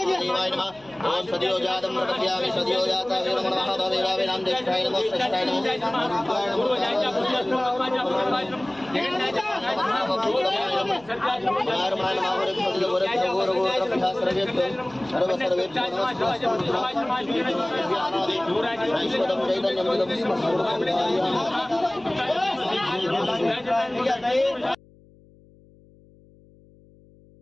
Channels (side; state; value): left; noise; hum, 27 dB below the sound